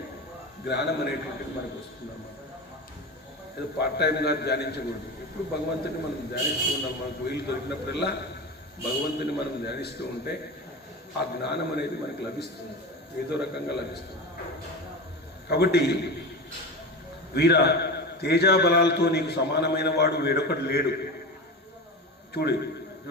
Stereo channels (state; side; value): normal; both; correlation 0.25